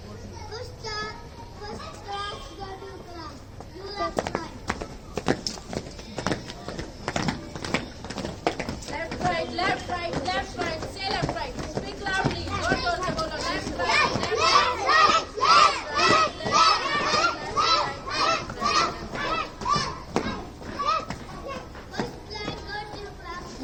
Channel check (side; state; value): both; identical; correlation 1.00